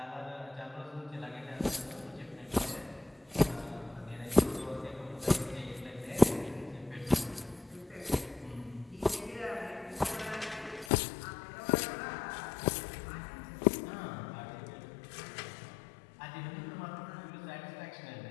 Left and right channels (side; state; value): right; drops out; at 10.9 s